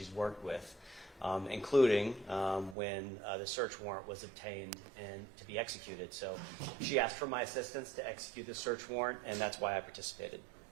worked with, including when the search warrant was obtained and to be executed. So she asked for my assistance to execute the search warrant, and that's why I participated.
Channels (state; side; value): drops out; left; at 2.8 s